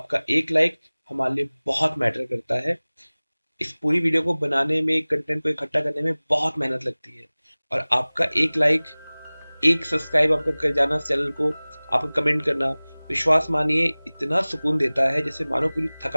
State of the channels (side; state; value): both; inverted; correlation -1.00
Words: एक लाइक हमारे लिए बहुत मैटर करता है। इस पूरी वीडियो को बनाने में, कंटेंट को इकट्ठा करने में बहुत मेहनत लगती है। और आपका एक लाइक, एक सब्सक्राइब आपका कर जाना चैनल को, आपका कमेंट करना, विश्वास मानिए इतना सुकून देता है जैसे मानो पूरी